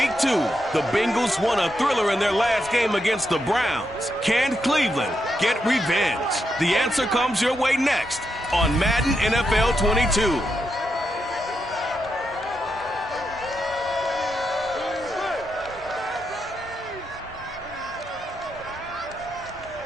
2, the Bengals won a thriller in their last game against the Browns. Can Cleveland get revenge? The answer comes your way next on Madden NFL 22.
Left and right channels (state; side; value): normal; both; correlation 0.83